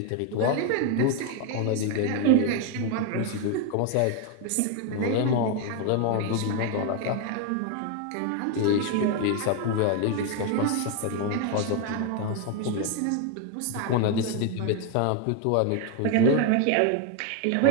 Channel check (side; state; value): both; different; correlation 0.01